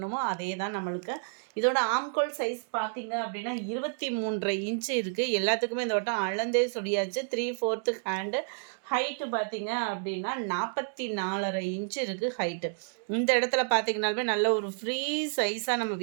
அதே தான் நம்மளுக்கு. இதோட ஆம்கோல் சைஸ் பார்த்தீங்க அப்படின்னா 23.5 இன்ச்சு இருக்குது. எல்லாத்துக்குமே இந்த வட்டம் அளந்தே சொல்லியாச்சு. 3/4 ஹேண்டு. ஹைட்டு பார்த்தீங்க அப்படின்னா 44.5 இன்ச்சு இருக்குது ஹைட்டு. இந்த இடத்துல பார்த்தீங்கன்னாலுமே நல்ல ஒரு ஃப்ரீ சைஸாக நம்ம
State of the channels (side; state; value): left; silent; digital silence